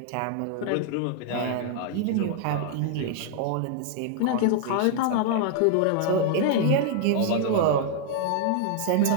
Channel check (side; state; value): both; different; correlation 0.00